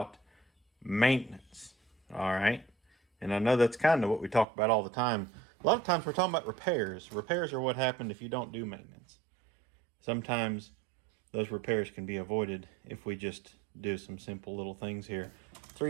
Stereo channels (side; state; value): left; drops out; at 4.5 s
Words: maintenance. All right. And I know that's kind of what we talk about all the time. A lot of times we're talking about repairs. Repairs are what happened if you don't do maintenance. Sometimes those repairs can be avoided if we just do some simple little things here.